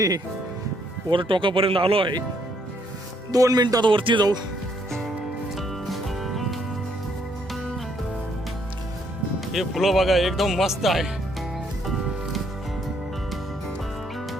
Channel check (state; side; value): normal; both; correlation 0.70